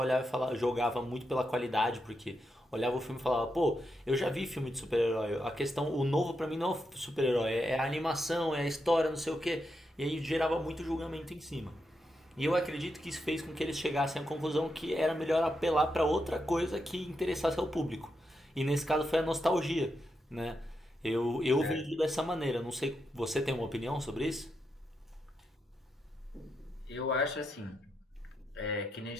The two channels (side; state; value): both; normal; correlation 0.84